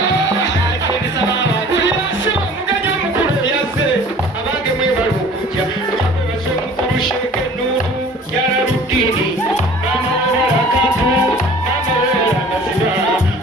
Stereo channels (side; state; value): both; normal; correlation 0.47